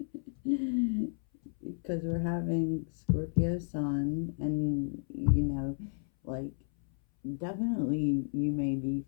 Because we're having Scorpio Sun, and, you know, like, definitely you may be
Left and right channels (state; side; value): silent; right; 56 dB below the other